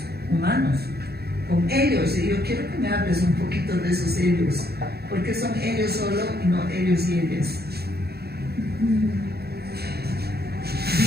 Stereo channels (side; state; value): left; late; 0.46 ms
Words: humanos, con ellos. Y yo quiero que me hables un poquito de esos ellos, porque son ellos solo y no ellos y ellas.